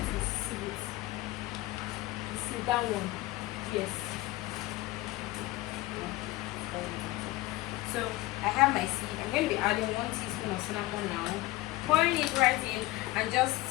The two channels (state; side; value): quieter; right; 18.5 dB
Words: sieve it. You see that one? Yes. So I have my sieve. I'm going to be adding 1 teaspoon of cinnamon now, pouring it right in, and I'm